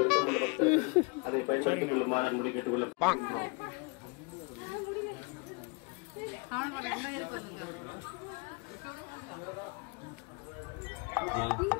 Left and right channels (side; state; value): right; quieter; 30.9 dB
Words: பக்தர்கள் அதை பயன்படுத்திக் கொள்ளுமாறு அன்புடன் கேட்டுக்கொள்ளலாம்.